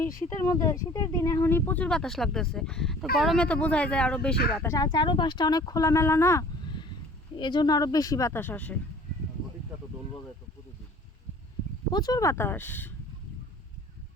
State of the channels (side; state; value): both; normal; correlation 0.49